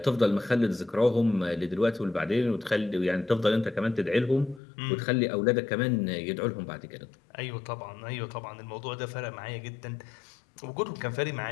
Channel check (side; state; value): right; drops out; at 4.6 s